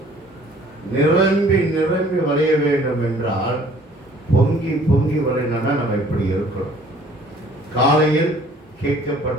நிரம்பி நிரம்பி வளைய வேண்டும் என்றால் பொங்கி பொங்கி வளையணும்னா நம்ம இப்படி இருக்கணும். காலையில்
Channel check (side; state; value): both; normal; correlation 0.55